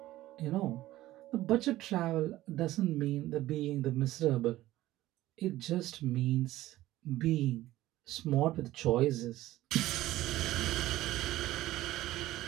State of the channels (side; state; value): left; quieter; 15.8 dB